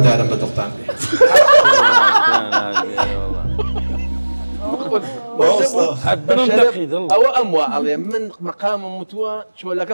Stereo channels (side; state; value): both; inverted; correlation -1.00